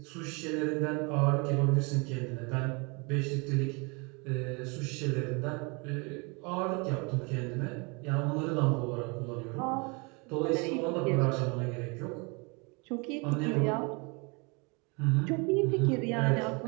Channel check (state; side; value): quieter; left; 30.5 dB